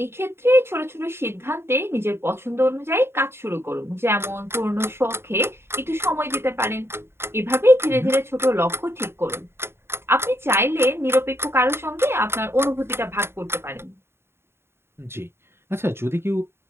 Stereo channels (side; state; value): left; late; 0.12 ms